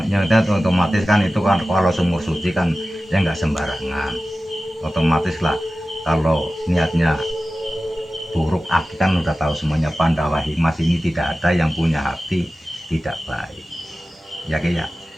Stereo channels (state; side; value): normal; both; correlation 0.95